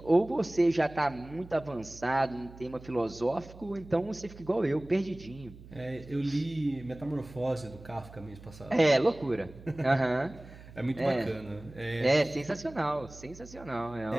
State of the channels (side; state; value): right; noise; hum, 18 dB below the sound